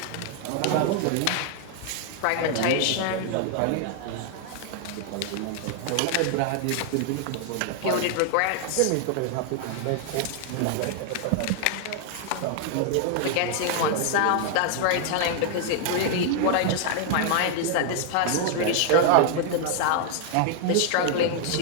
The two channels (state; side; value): different; both; correlation 0.00